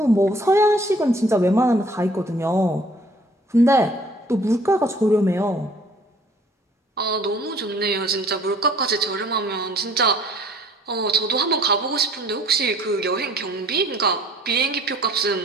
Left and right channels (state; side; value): normal; both; correlation 0.56